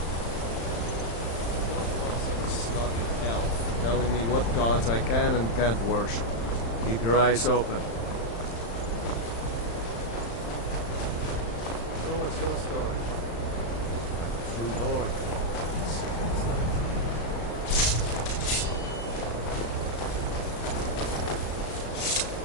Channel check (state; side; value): late; right; 35 ms